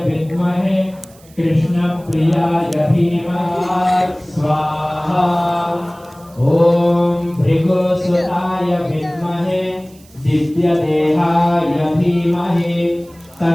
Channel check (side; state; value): right; noise; hiss, 27 dB below the sound